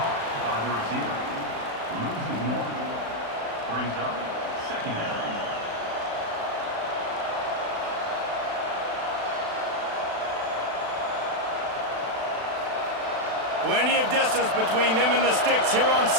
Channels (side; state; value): left; late; 36 ms